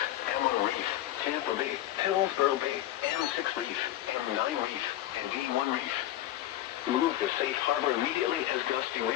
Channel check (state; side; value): quieter; right; 13.9 dB